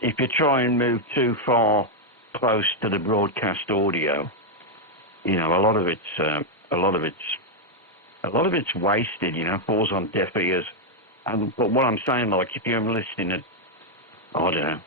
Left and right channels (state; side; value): normal; both; correlation 0.00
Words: you try and move too far close to the broadcast audio, you know, a lot of it's wasted. You know, falls on deaf ears. But what I'm saying, like, if you're listening at, I don't know,